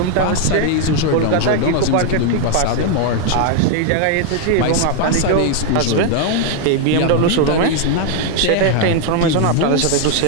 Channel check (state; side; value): different; both; correlation 0.00